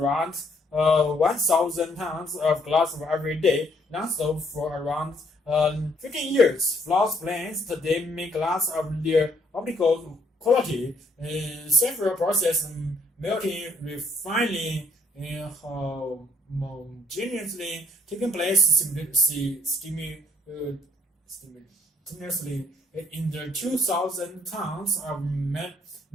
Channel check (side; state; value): both; normal; correlation 0.67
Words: 1,000 tons of glass every day, non-stop for around 15 years. Floss plants today make glass of their optical quality. Several processes, melting, refining, homogeneously taking place simultaneously in the 2,000 tons of